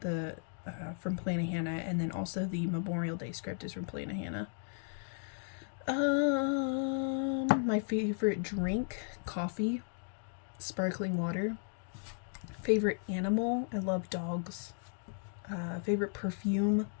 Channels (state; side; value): silent; right; 54 dB below the other